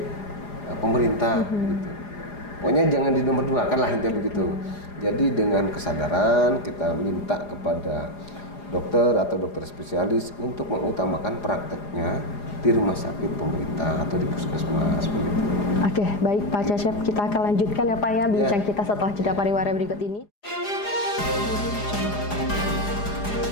pemerintah gitu. Pokoknya jangan di nomor 2 kan lah intinya begitu. Jadi dengan kesadaran kita minta kepada dokter atau dokter spesialis untuk mengutamakan prakteknya di rumah sakit pemerintah atau di puskesmas begitu. Oke, baik Pak Cecep, kita akan lanjutkan ya Pak ya bincang kita setelah jeda pariwara berikut ini.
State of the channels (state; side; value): late; right; 4.9 ms